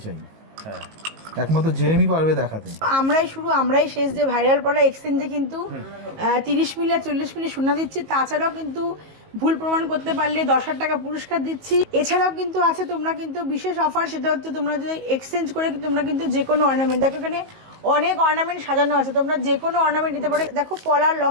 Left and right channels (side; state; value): left; late; 19 ms